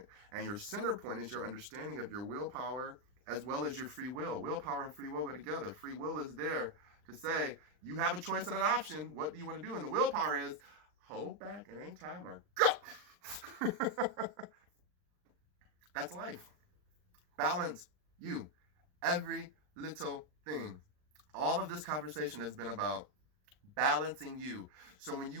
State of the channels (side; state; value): left; late; 39 ms